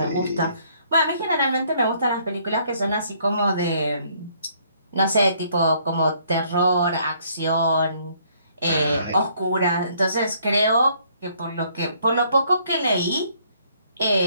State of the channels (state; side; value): inverted; both; correlation -0.65